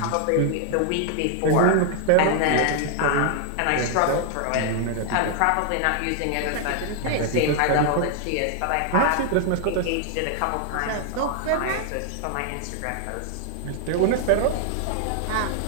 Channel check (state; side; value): different; both; correlation 0.00